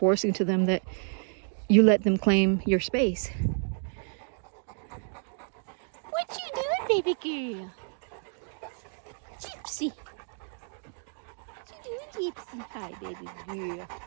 to them that you let them claim your space. What you doing, baby girl? Gypsy. What you doing, Gypsy? Hi, baby girl.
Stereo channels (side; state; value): left; silent; 58 dB below the other